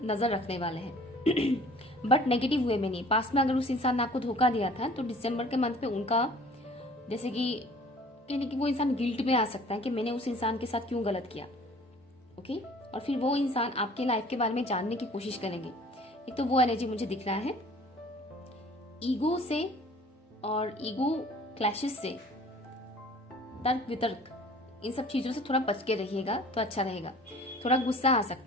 नजर रखने वाले हैं बट नेगेटिव वे में नहीं। पास्ट में अगर उस इंसान ने आपको धोखा दिया था तो दिसंबर के मंथ में उनका, जैसे कि कहने कि वो इंसान गिल्ट में आ सकता है कि मैंने उस इंसान के साथ क्यों गलत किया, ओके। और फिर वो इंसान आपके लाइफ के बारे में जानने की कोशिश करेंगे। एक तो वो एनर्जी मुझे दिख रहा है। ईगो से और ईगो क्लैशेस से, तर्क वितर्क, इन सब चीजों से थोड़ा बच के रहिएगा तो अच्छा रहेगा। थोड़ा गुस्सा आ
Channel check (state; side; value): normal; both; correlation 0.50